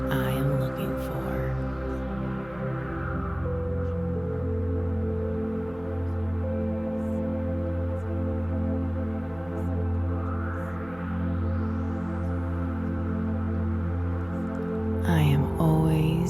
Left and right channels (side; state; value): left; noise; hum, 21 dB below the sound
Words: I am looking for. I am